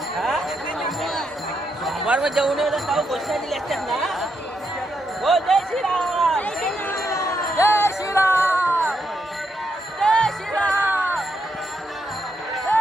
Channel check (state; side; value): normal; both; correlation 0.81